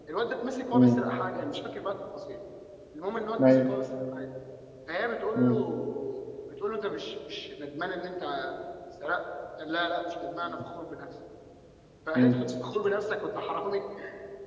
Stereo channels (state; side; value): identical; both; correlation 1.00